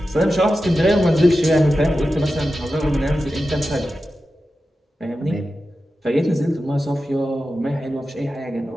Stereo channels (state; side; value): normal; both; correlation 0.92